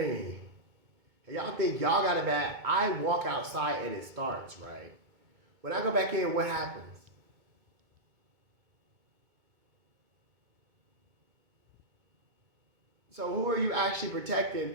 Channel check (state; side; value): late; left; 2.2 ms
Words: Y'all think y'all got it bad. I walk outside and it starts, right? When I go back in, what happens? So who are you actually